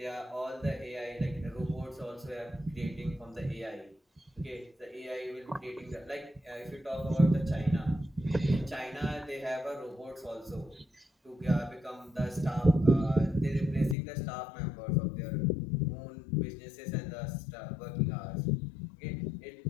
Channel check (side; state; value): right; drops out; at 14.0 s